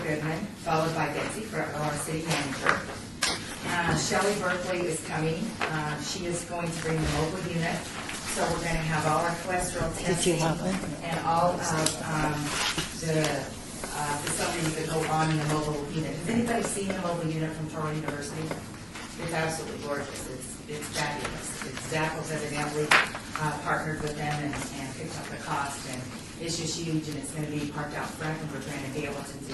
Goodman, followed by Betsy Fretwell, our city manager. Shelley Berkeley is coming. She is going to bring the mobile unit. So we're going to have all our cholesterol testing and all of the facilities that go on in the mobile unit. Has anybody seen the mobile unit from Toronto University? It's absolutely gorgeous. It's fabulous. Zappos evidently partnered with them and picked up the cost, and it's just huge, and it's going to be parked out front, and we're going to be able to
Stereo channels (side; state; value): both; identical; correlation 1.00